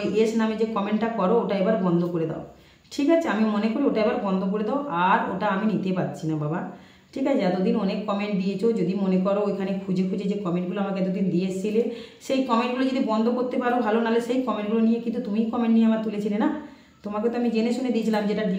এস নামে যে কমেন্টটা করো ওটা এবার বন্ধ করে দাও, ঠিক আছে? আমি মনে করি ওটা এবার বন্ধ করে দাও, আর ওটা আমি নিতে পারছি না বাবা, ঠিক আছে? এতদিন অনেক কমেন্ট দিয়েছো, যদি মনে করো ওইখানে খুঁজে যে কমেন্টগুলো আমাকে এতদিন দিয়ে এসেছিলে, সেই কমেন্টগুলো যদি বন্ধ করতে পারো ভালো, নাহলে সেই কমেন্টগুলো নিয়ে কিন্তু তুমি কমেন্ট নিয়ে আমার তুলেছিলে না, তোমাকে তো আমি জেনে শুনে দিয়েছিলাম যেটা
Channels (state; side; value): identical; both; correlation 1.00